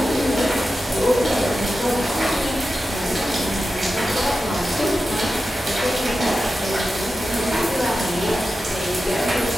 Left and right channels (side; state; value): both; normal; correlation 0.92